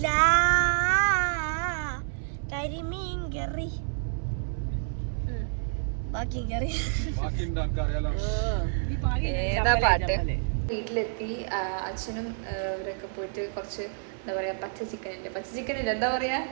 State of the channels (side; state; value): left; silent; 59 dB below the other